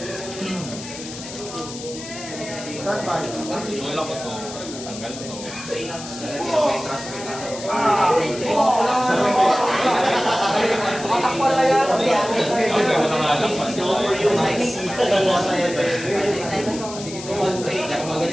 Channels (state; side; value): noise; left; hiss, 12 dB below the sound